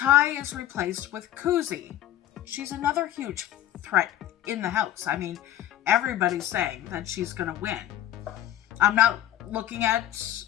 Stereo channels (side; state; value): right; quieter; 12.5 dB